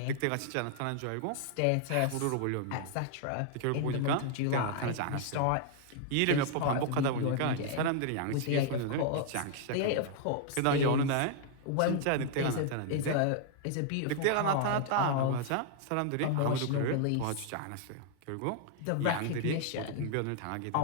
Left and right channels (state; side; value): different; both; correlation 0.00